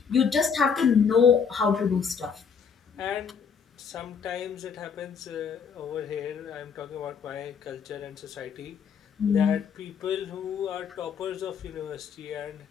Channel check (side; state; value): right; quieter; 6.4 dB